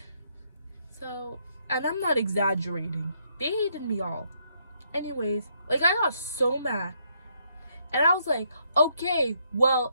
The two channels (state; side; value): inverted; both; correlation -0.74